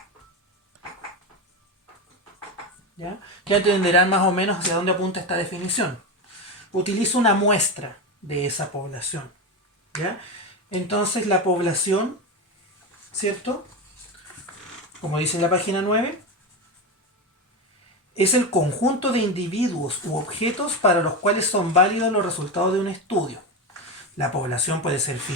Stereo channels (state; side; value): normal; both; correlation 0.17